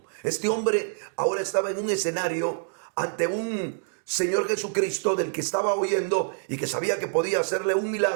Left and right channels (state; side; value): silent; left; digital silence